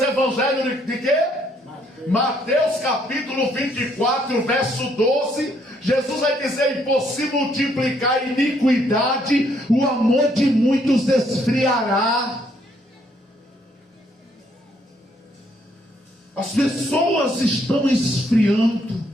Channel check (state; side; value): normal; both; correlation 0.69